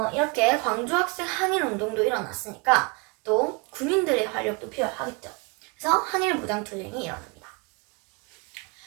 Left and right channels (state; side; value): quieter; left; 29.7 dB